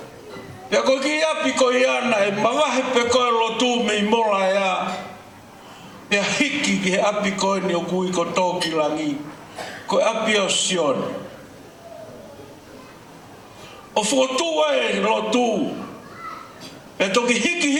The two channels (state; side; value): identical; both; correlation 1.00